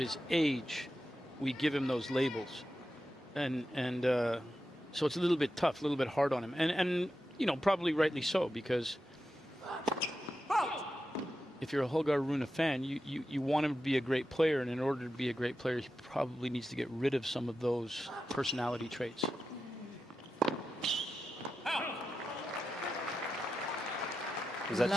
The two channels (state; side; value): normal; both; correlation 0.90